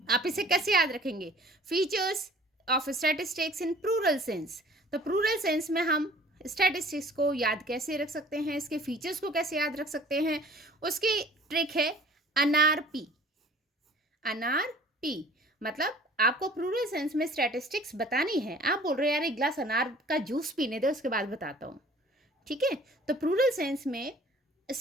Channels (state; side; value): normal; both; correlation 0.50